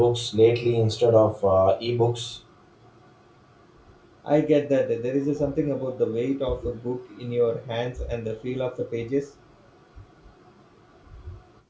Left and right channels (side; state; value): both; identical; correlation 1.00